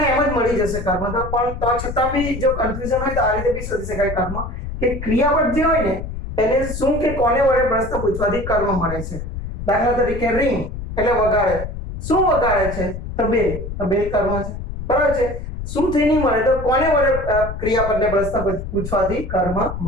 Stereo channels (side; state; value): left; noise; rumble, 7 dB below the sound